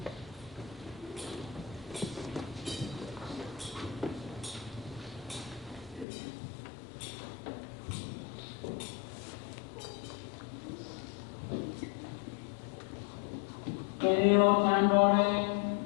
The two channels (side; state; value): right; drops out; at 6.1 s